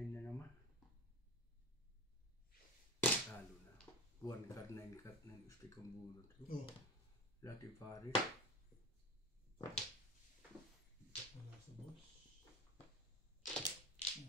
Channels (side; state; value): both; normal; correlation 0.28